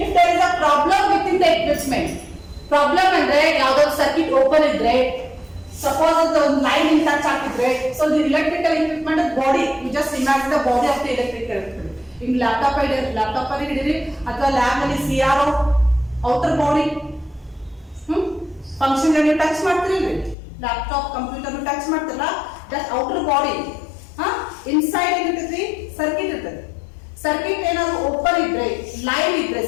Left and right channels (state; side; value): drops out; right; at 20.4 s